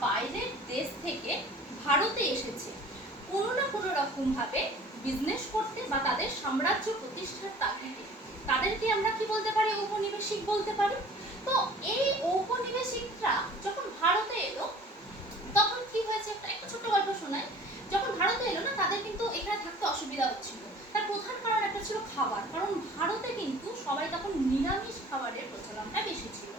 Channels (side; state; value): both; normal; correlation 0.47